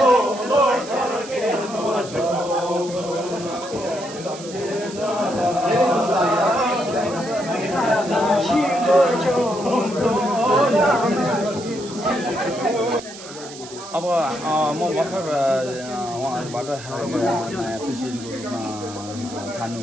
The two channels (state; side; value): noise; right; hiss, 15 dB below the sound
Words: अब म भर्खर उहाँहरूबाट नयाँ प्रेसिडेन्टको रूपमा